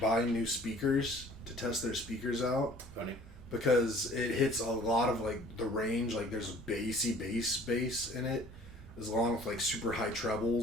new speakers to test their speakers out. Funny. Because it hits a lot of like the range, like there's a bass in it, as long with like super high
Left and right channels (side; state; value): both; normal; correlation 0.52